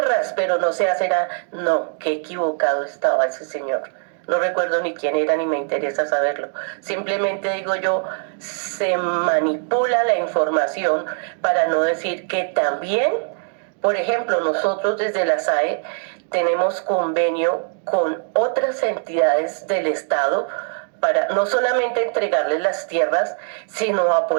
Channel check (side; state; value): left; silent; 65 dB below the other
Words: pero no se hace nada. No, qué equivocado estaba ese señor. No recuerdo ni quién era, ni me interesa saberlo. Simplemente digo yo, se manipula la información para no decir que también, por ejemplo, nosotros desde la SAE tenemos convenio con otras entidades del Estado para no solamente entregarles las tierras, sino